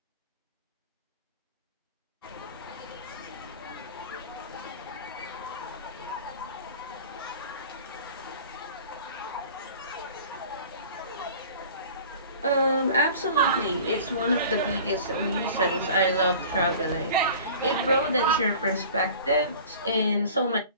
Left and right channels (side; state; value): both; inverted; correlation -0.43